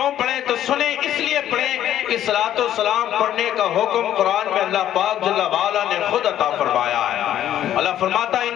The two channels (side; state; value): right; quieter; 11.5 dB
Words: پڑھیں؟ تو سنیں اس لیے پڑھیں کہ صلاۃ السلام پڑھنے کا حکم قرآن میں اللہ پاک جل وعلا نے خود عطا فرمایا ہے. اللہ فرماتا ہے